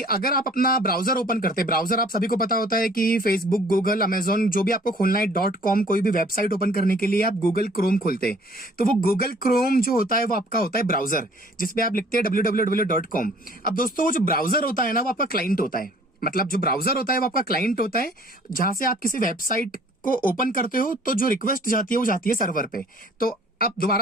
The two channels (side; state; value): both; normal; correlation 0.54